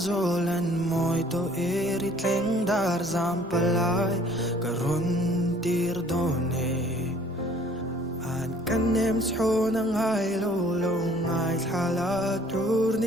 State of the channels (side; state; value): both; normal; correlation 0.55